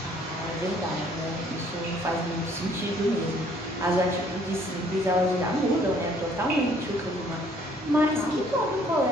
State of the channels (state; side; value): normal; both; correlation 0.61